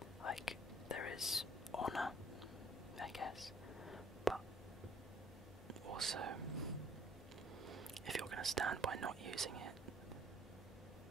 There is honour, I guess, but also, if you're going to stand by not using it,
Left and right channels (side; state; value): both; normal; correlation 0.59